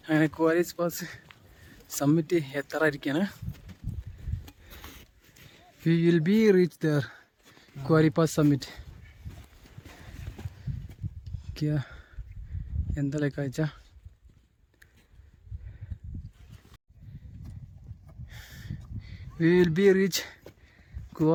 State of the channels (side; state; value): both; identical; correlation 1.00